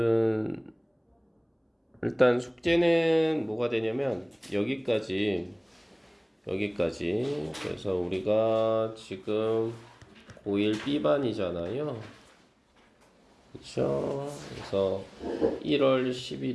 일단 숙제는 뭐가 되냐면 여기까지. 그래서 우리가 지금 고1 B반이잖아요. 그쵸? 그래서 1월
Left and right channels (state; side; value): identical; both; correlation 1.00